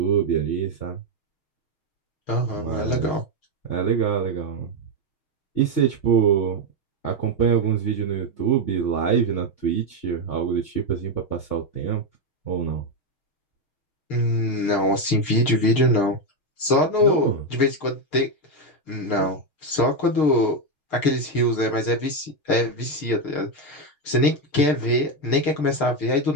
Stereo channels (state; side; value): late; right; 6.6 ms